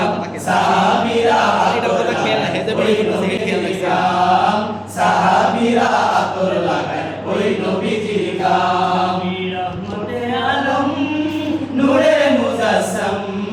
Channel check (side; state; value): both; identical; correlation 1.00